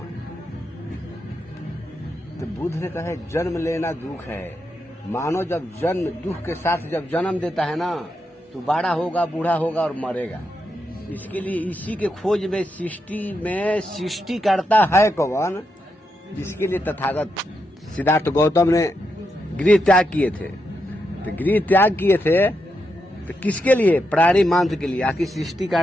तो बुद्ध ने कहा जन्म लेना दुख है। मानव जब जन्म दुख के साथ जब जन्म देता है ना, तो बड़ा होगा, बूढ़ा होगा और मरेगा। इसके लिए इसी के खोज में सृष्टि करता है कौन, जिसके लिए तथागत सिद्धार्थ गौतम ने गृह त्याग किए थे। तो गृह त्याग किए थे तो किसके लिए? प्राणी मात्र के लिए। आखिर सृष्टि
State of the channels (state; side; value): normal; both; correlation 0.84